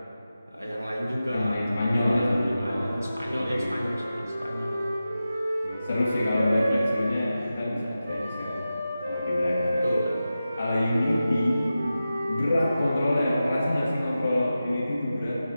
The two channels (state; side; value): inverted; both; correlation -0.93